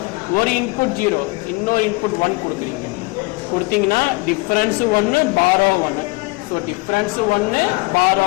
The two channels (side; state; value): right; quieter; 25.3 dB